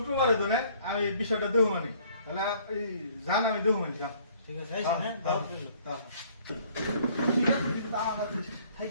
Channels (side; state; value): both; inverted; correlation -0.58